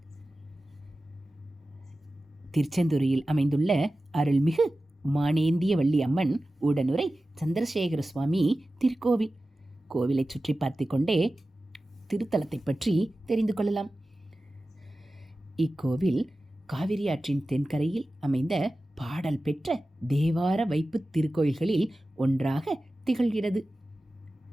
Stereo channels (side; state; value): both; normal; correlation 0.95